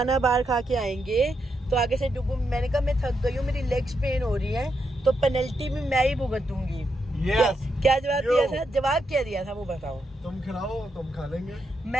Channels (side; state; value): both; normal; correlation 0.82